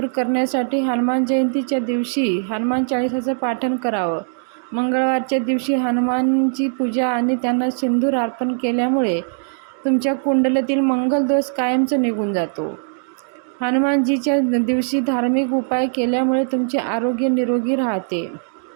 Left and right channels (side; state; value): left; silent; digital silence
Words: करण्यासाठी हनुमान जयंतीच्या दिवशी हनुमान चाळीसाचं पाठन करावं। मंगळवारच्या दिवशी हनुमानची पूजा आणि त्यांना सिंदूर अर्पण केल्यामुळे तुमच्या कुंडलीतील मंगल दोष कायमचा निघून जातो। हनुमानजीच्या दिवशी धार्मिक उपाय केल्यामुळे तुमचे आरोग्य निरोगी राहते।